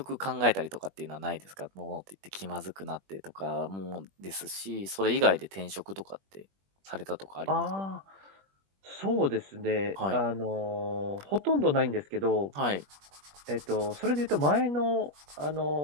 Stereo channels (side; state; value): left; late; 21 ms